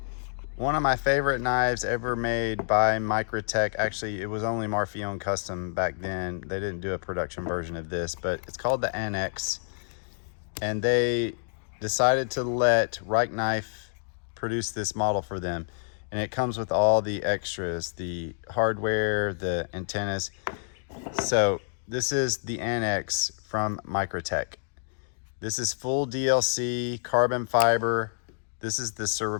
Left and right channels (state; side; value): silent; right; digital silence